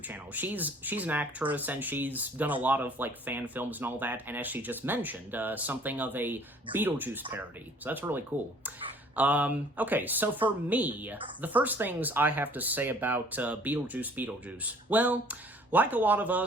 channel. She's an actress, and she's done a lot of, fan films and all that, and as she just mentioned, something of a Beetlejuice parody. So that's really cool. Okay, so for me, the first things I have to say about Beetlejuice Beetlejuice, well, like a lot of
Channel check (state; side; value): normal; both; correlation 0.54